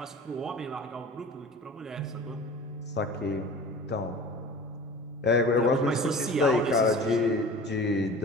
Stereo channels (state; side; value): normal; both; correlation 0.40